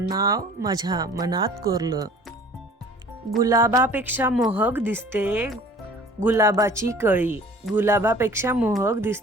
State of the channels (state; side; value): normal; both; correlation 0.49